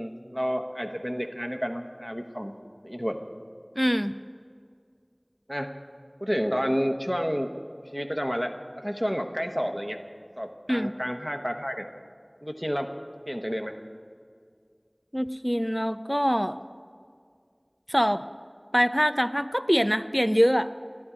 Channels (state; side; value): identical; both; correlation 1.00